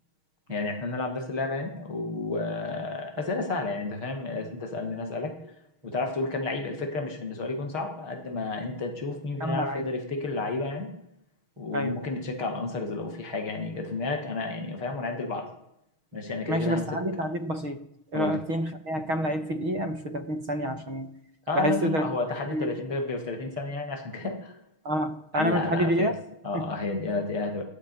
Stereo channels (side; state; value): left; late; 6.4 ms